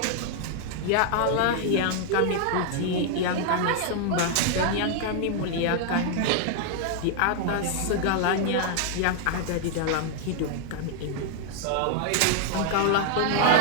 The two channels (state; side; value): different; both; correlation 0.00